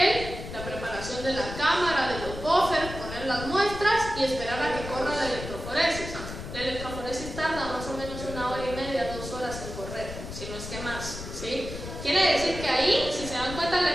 la preparación de la cámara, de los buffers, poner las muestras y esperar a que corra la electroforesis. La electroforesis tarda más o menos 1 hora y media, 2 horas en correr, si no es que más, ¿sí? Quiere decir que ahí, si se dan cuenta, la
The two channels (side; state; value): left; noise; rumble, 9 dB below the sound